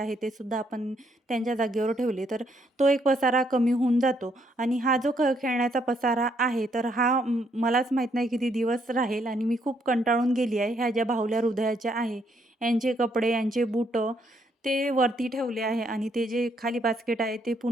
ते सुद्धा आपण त्यांच्या जागेवर ठेवले, तर तो एक पसारा कमी होऊन जातो. आणि हा जो खेळण्याचा पसारा आहे, तर हा मलाच माहीत नाही किती दिवस राहील आणि मी खूप कंटाळून गेली आहे. ह्या ज्या बाहुल्या हृदयाच्या आहे, यांचे कपडे, यांचे बुटं ते वरती ठेवले आहे आणि ते जे खाली बास्केट आहे ते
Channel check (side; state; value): both; normal; correlation 0.72